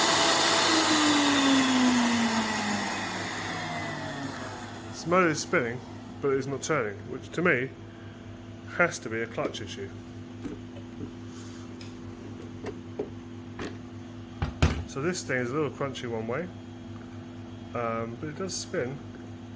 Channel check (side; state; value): both; identical; correlation 1.00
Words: This motor is spinning, but it's not turning, which to me has to be a clutch issue. So this thing is a little crunchy one way, but it does spin.